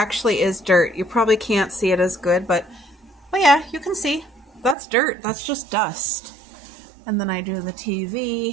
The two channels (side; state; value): left; drops out; at 4.8 s